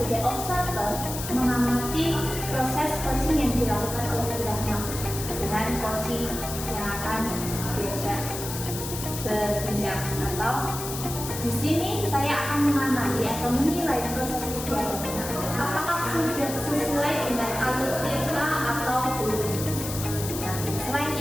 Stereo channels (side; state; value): left; noise; hiss, 7 dB below the sound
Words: observer mengamati proses coaching yang dilakukan oleh Bu Ratna dengan coaching yang akan diajak berbincang, atau di sini saya akan mengamati atau menilai proses kegiatannya apakah sudah sesuai dengan alur TK atau belum. Nah, selain